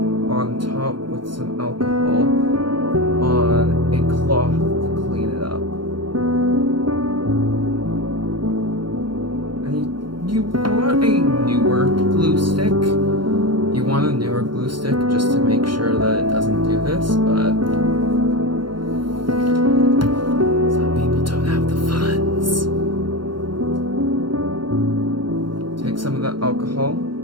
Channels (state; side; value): late; left; 0.72 ms